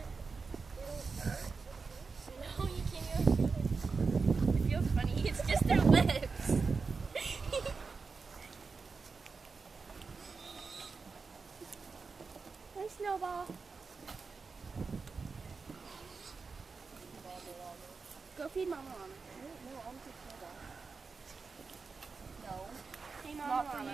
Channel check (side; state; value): left; quieter; 4.7 dB